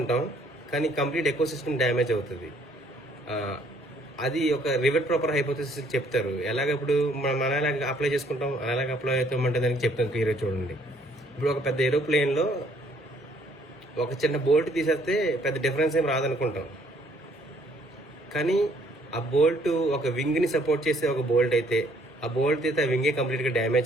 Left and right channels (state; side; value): normal; both; correlation 0.63